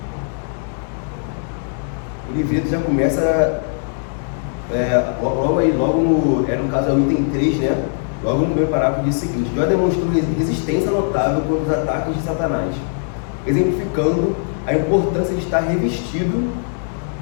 O livreto já começa logo no caso é o item 3, né? Logo no primeiro parágrafo diz o seguinte: Jó demonstrou resistência notável contra os ataques de Satanás, exemplificando a importância de estar revestido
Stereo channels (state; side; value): silent; right; digital silence